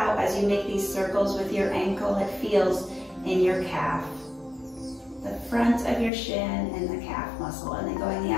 as you make these circles with your ankle, it feels in your calf. The front of your shin and the calf muscle. And then going the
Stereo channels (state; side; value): drops out; right; at 6.1 s